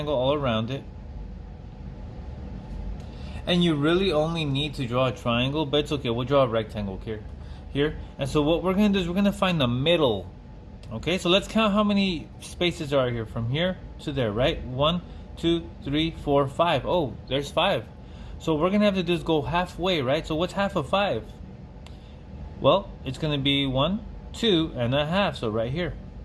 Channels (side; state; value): both; identical; correlation 1.00